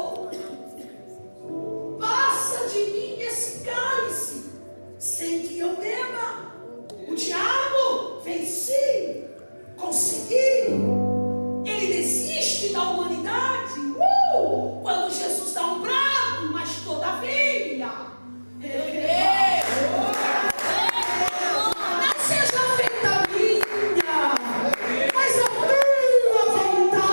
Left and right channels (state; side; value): inverted; both; correlation -1.00